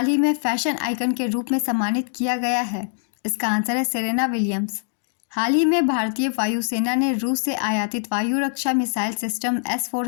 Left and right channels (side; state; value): right; silent; digital silence